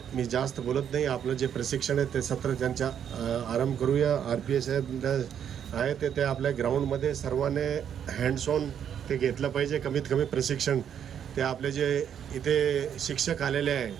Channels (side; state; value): left; quieter; 8.8 dB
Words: मी जास्त बोलत नाही, आपलं जे प्रशिक्षण आहे ते सत्र त्यांच्या आरंभ करूया. RPA साहेब आहे ते आपल्या ग्राउंडमध्ये सर्वांनी हँड्स ऑन ते घेतलं पाहिजे. कमीत कमी प्रशिक्षण ते आपले जे इथे शिक्षक आलेले आहे,